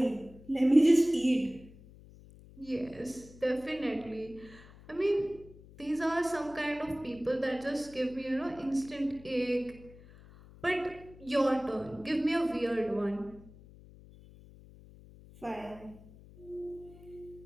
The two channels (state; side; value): noise; left; hum, 21 dB below the sound